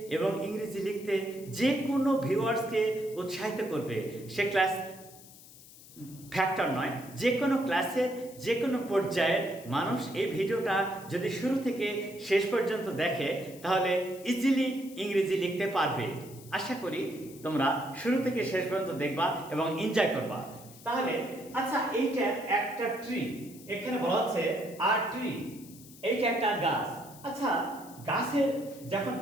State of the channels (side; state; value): left; noise; hiss, 20 dB below the sound